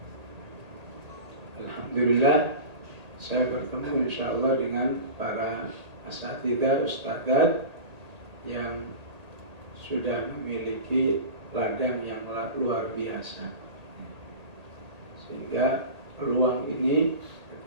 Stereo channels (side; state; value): left; late; 1.8 ms